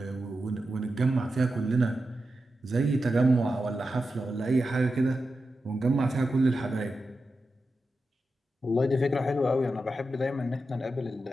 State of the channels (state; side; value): normal; both; correlation 0.90